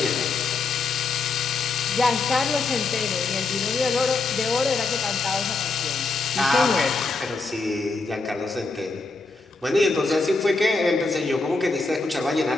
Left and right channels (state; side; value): quieter; right; 3.8 dB